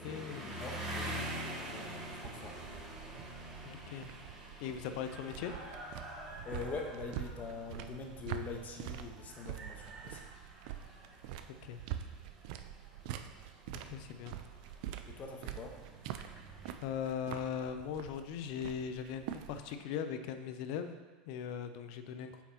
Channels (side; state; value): both; normal; correlation 0.11